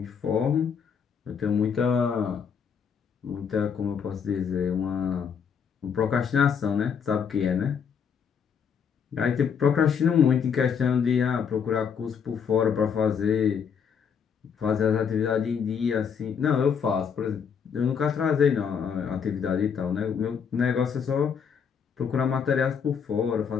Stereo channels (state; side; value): quieter; right; 6.9 dB